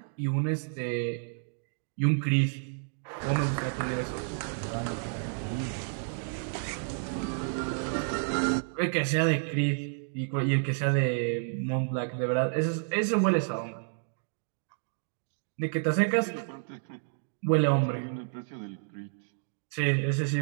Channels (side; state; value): left; silent; digital silence